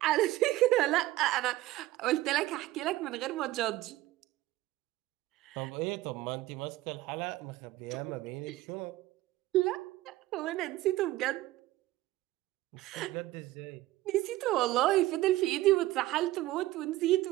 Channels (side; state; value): left; quieter; 16.8 dB